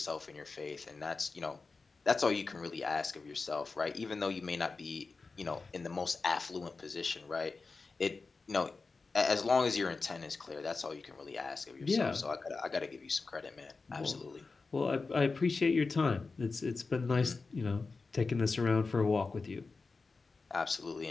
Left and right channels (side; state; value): right; quieter; 4.2 dB